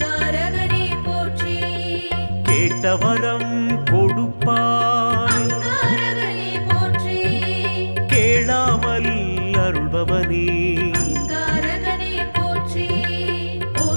போற்றி கேட்டவரம் கொடுப்பாய். அங்காரகனே போற்றி கேளாமல் அருள்பவனே அங்காரகனே போற்றி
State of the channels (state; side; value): inverted; both; correlation -1.00